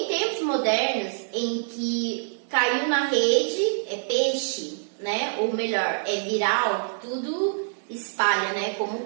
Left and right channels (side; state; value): left; silent; digital silence